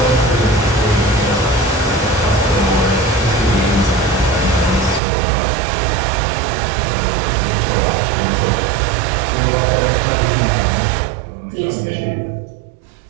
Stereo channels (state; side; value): drops out; left; at 5.0 s